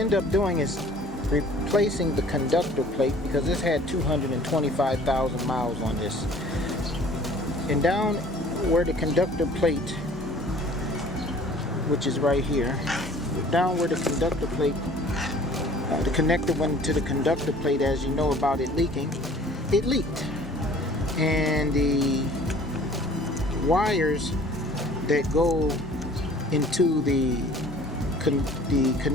up doing is replacing the conductor plate, because this had 225,000 miles on this. And down where the conductor plate, which is right here, down where the conductor plate, the connector went to the conductor plate, as you know about it leaking, it leaked. And the wires that go into the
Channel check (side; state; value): both; normal; correlation 0.51